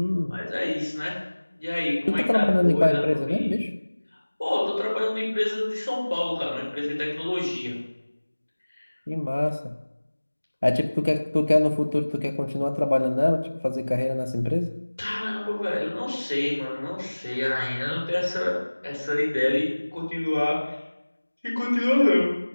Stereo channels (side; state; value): both; inverted; correlation -1.00